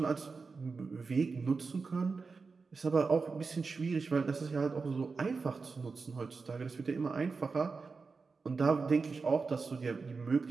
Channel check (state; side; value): quieter; left; 4.5 dB